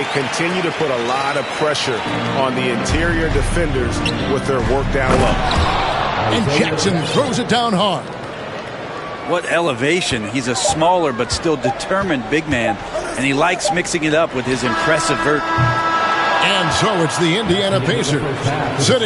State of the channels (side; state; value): both; identical; correlation 1.00